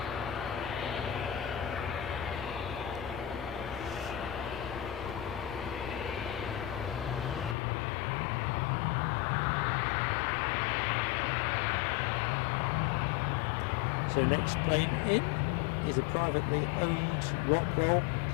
So next plane in is a privately owned Rockwell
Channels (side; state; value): right; drops out; at 7.6 s